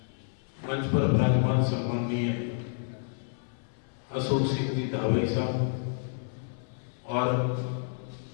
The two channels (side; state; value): right; silent; 58 dB below the other